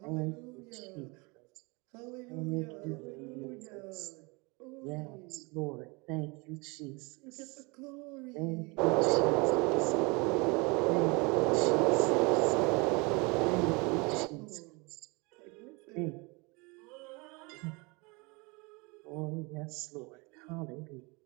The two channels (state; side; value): quieter; left; 27.8 dB